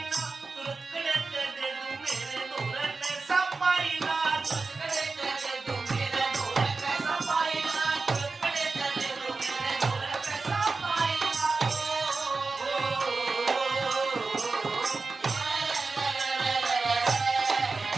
ना तुरकड़े ते दे दूं मेरे दोरे पैसा पाईना तुरकड़े ते दे दूं मेरे दोरे पैसा पाईना तुरकड़े ते दे दूं मेरे दोरे पैसा पाईना।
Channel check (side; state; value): left; quieter; 4.0 dB